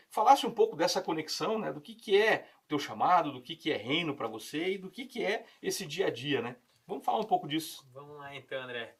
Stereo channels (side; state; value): both; identical; correlation 1.00